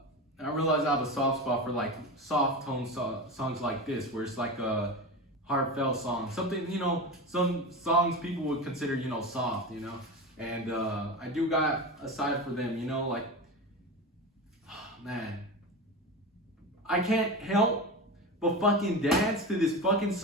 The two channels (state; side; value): normal; both; correlation 0.24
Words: I realized I have a soft spot for like soft tone songs like this, where it's like a heartfelt song, something, some songs people would consider, soft, and I do got a side for them, like, man, I can't help but fucking dance to this fucking